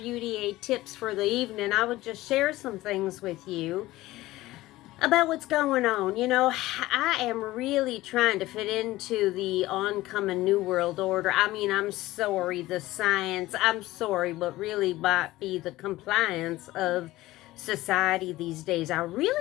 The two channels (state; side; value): quieter; right; 17.4 dB